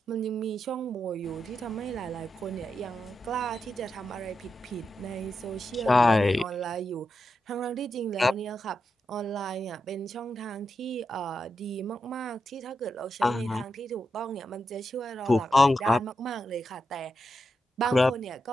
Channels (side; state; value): both; normal; correlation 0.86